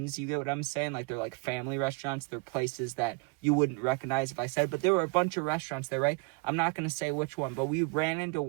you get what I'm saying? Like they're like family restaurants. They're places that you wouldn't recognize if I said, but there were a bunch of restaurants there, right? I'm not going to say which one, but we ran into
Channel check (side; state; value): left; quieter; 30.7 dB